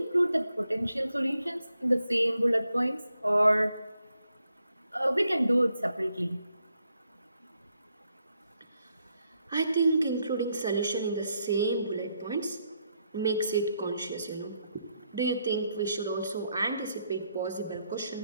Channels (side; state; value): both; inverted; correlation -0.78